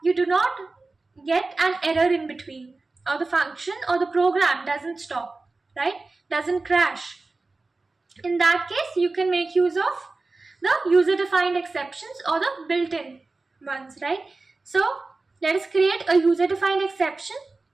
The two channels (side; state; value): left; quieter; 3.5 dB